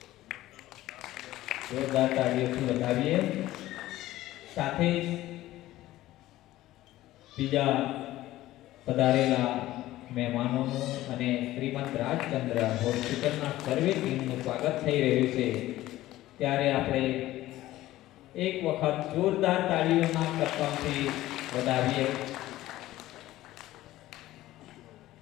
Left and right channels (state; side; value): quieter; right; 15.6 dB